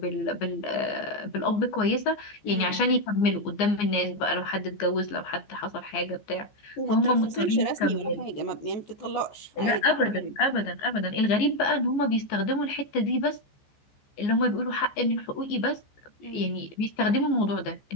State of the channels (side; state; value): right; late; 14 ms